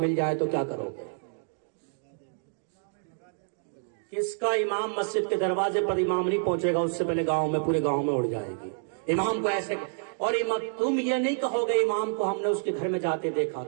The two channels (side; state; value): left; silent; 59 dB below the other